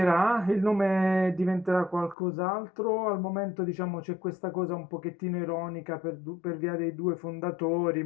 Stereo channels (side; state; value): right; drops out; at 2.1 s